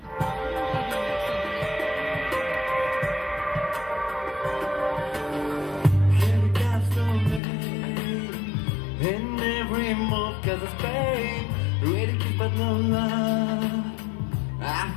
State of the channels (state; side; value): drops out; right; at 7.4 s